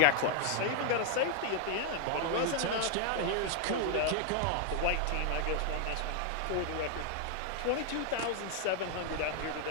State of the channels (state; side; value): different; both; correlation 0.00